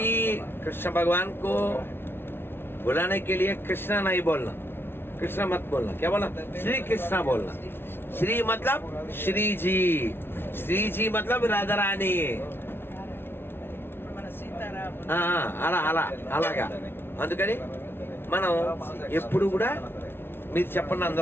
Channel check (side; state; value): right; late; 0.11 ms